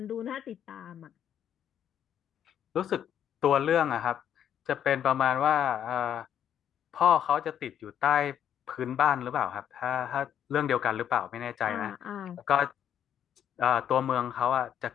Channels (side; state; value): right; quieter; 9.5 dB